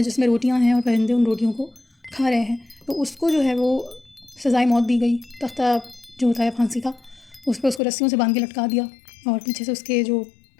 جس میں روٹیاں ہیں اور پرندے ان روٹیوں کو کھا رہے ہیں، تو اس کو جو ہے وہ سزائے موت دی گئی۔ تختہ جو ہوتا ہے پھانسی کا، اس پہ اس کو رسیوں سے باندھ کے لٹکا دیا اور پیچھے سے اس کے جو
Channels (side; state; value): right; drops out; at 7.8 s